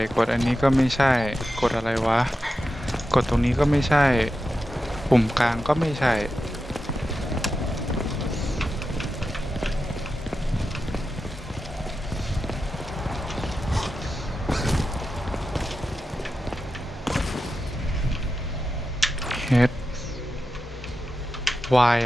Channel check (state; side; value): normal; both; correlation 0.91